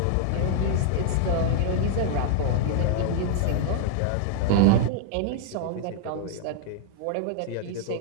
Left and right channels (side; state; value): both; different; correlation 0.00